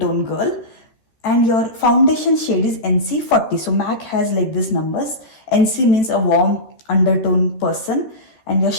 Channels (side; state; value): right; late; 14 ms